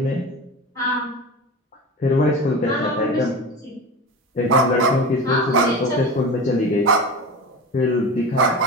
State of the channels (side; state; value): both; normal; correlation 0.28